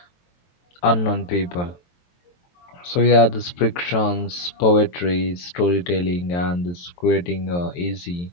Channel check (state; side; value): late; right; 23 ms